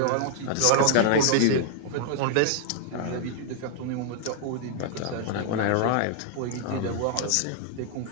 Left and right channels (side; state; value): both; different; correlation 0.00